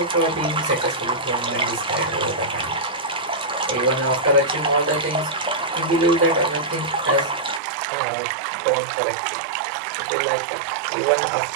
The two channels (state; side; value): drops out; left; at 7.6 s